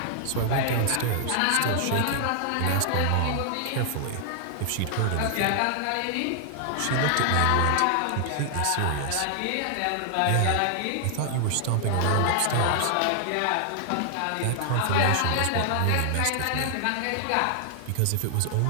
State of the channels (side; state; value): both; different; correlation 0.00